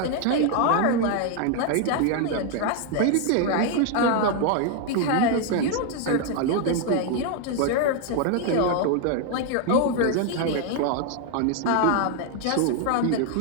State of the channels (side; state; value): both; different; correlation 0.00